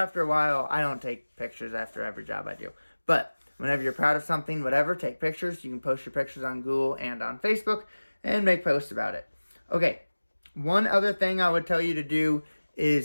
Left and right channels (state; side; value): inverted; both; correlation -1.00